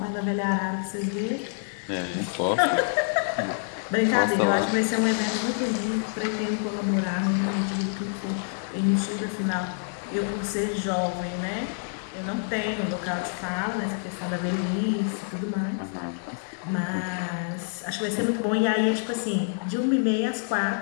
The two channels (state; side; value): silent; right; 60 dB below the other